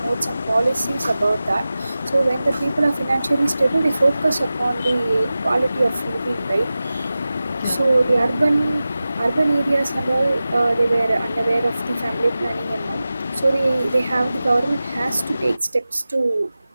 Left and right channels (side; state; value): both; inverted; correlation -0.95